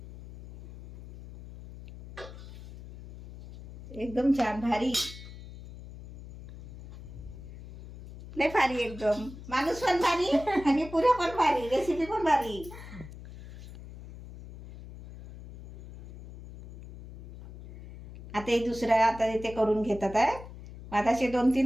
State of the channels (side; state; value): left; noise; hum, 15 dB below the sound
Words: एकदम छान भारी. लय भारी एकदम. माणूस पण भारी आणि पुऱ्या पण भारी. रेसिपी पण भारी. आता हे दुसरं आता ते करून घेतात आहे. आता असे